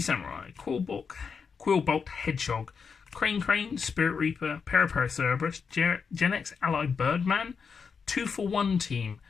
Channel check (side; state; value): right; quieter; 5.8 dB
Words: Quillbolt Hedgehog, Crane, Spirit Reaper, Paracerberus, Gen X Ally Birdman, 2-for-1 Team,